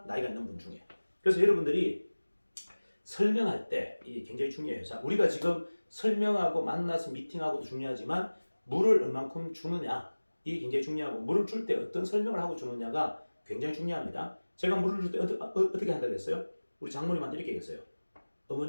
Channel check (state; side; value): inverted; both; correlation -1.00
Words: 나이가 있는 분 중에. 그래서 여러분들이 설명할 때 이게 굉장히 중요해요. 자, 우리가 지금 설명하고 만나서 미팅하고도 중요하지만 물을 얼만큼 주느냐 이게 굉장히 중요하고 물을 줄 때 어떤 설명을 하고 주느냐가 굉장히 중요합니다. 제가 물을 줄 때 어떻게 한다고 했어요? 우리 장모님한테 이렇게 얘기했어요.